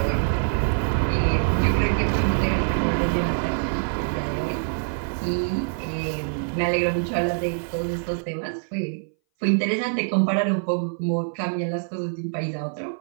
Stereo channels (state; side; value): silent; left; 60 dB below the other